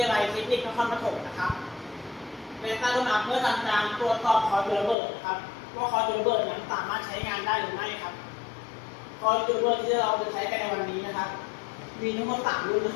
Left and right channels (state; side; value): drops out; right; at 5.0 s